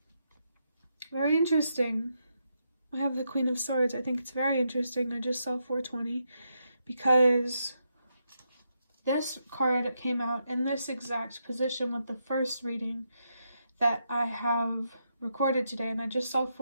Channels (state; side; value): inverted; both; correlation -0.82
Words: Very interesting. I have the Queen of Swords. I think it's very interesting. I just saw 420 because this card came out in this exact position with the first reading that I have recorded today, and I just saw